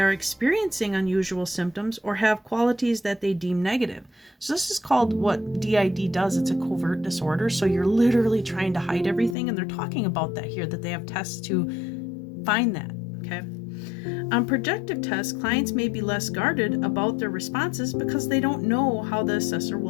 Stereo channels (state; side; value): drops out; right; at 9.3 s